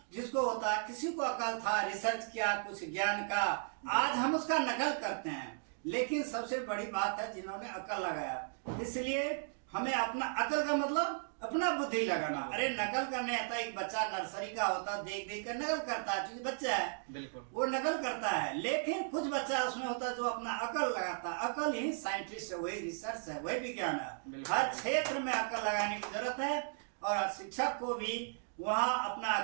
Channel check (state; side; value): silent; left; digital silence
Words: जिसको होता है, किसी को अकल था, रिसर्च किया कुछ ज्ञान का, आज हम उसका नकल करते हैं। लेकिन सबसे बड़ी बात है जिन्होंने अकल लगाया। इसलिए हमें अपना, अकल का मतलब अपना बुद्धि लगाना। अरे नकल करने आता, एक बच्चा नर्सरी का होता, देख देख कर नकल करता है, क्योंकि बच्चा है, बिल्कुल, वो वो नकल करता है। लेकिन कुछ बच्चा उसमें होता है जो अपना अकल लगाता है। अकल ही साइंटिस्ट है, वही रिसर्च है, वही विज्ञान है। हर क्षेत्र में अकल लगाने की जरूरत है, और शिक्षक को भी वहाँ अपना